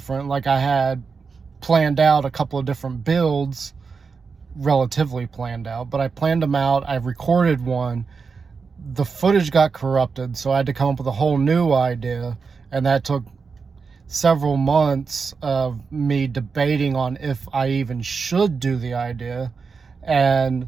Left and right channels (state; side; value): quieter; left; 5.1 dB